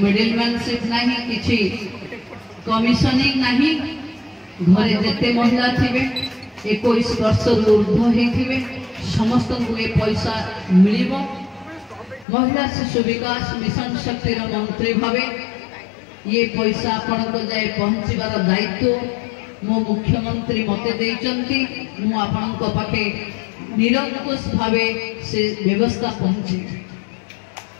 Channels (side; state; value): right; drops out; at 12.2 s